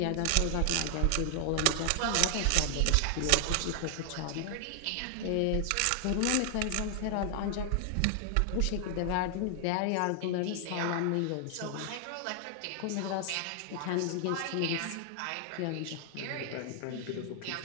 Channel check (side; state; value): both; different; correlation 0.00